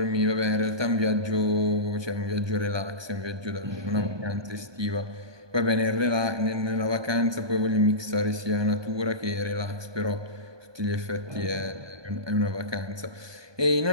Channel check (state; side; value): late; left; 1.2 ms